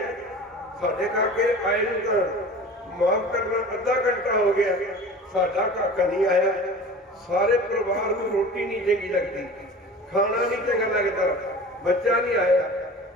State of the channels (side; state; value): both; normal; correlation 0.38